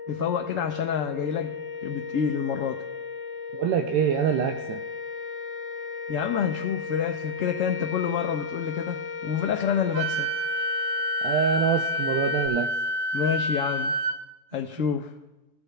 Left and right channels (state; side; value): late; left; 13 ms